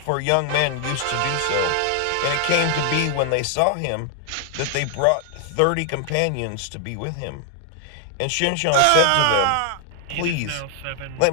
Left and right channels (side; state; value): both; different; correlation 0.00